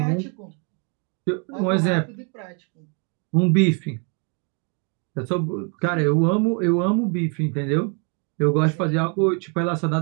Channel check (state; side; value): quieter; left; 36.7 dB